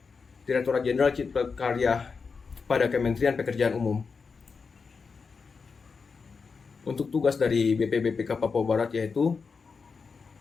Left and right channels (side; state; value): right; quieter; 5.1 dB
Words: Direktorat Jenderal Cipta Karya pada Kementerian Pekerjaan Umum. Untuk tugas dari BPBPK Papua Barat yaitu